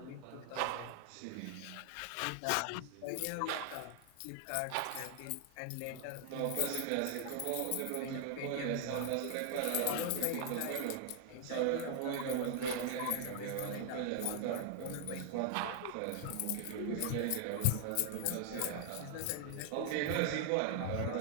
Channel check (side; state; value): both; different; correlation 0.00